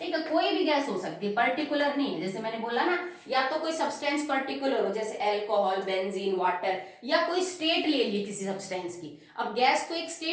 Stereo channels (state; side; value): identical; both; correlation 1.00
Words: है, कोई भी गैस हो सकती है, पर्टिकुलर नहीं है, जैसे मैंने बोला ना, या तो कोई सब्सटेंस पर्टिकुलर हो जैसे अल्कोहल, बेंजीन, वाटर, या कोई स्टेट ले ली किसी सब्सटेंस की। अब गैस तो एक